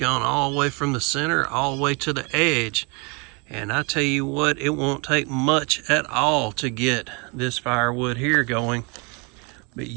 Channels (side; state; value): left; quieter; 31.6 dB